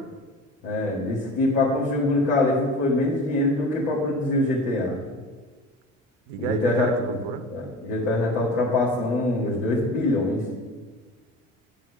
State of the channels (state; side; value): normal; both; correlation 0.37